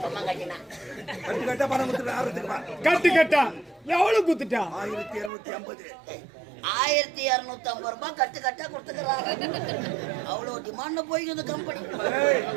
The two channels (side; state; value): left; drops out; at 5.3 s